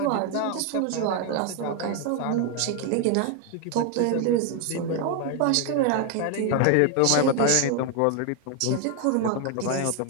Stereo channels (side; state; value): both; different; correlation 0.01